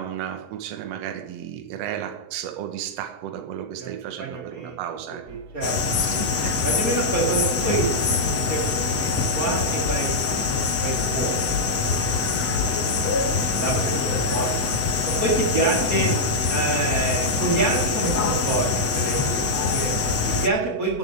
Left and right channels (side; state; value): left; late; 8.0 ms